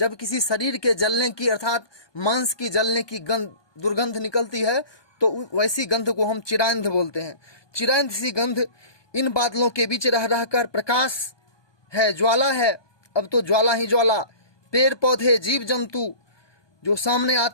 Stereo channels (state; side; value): late; right; 1.2 ms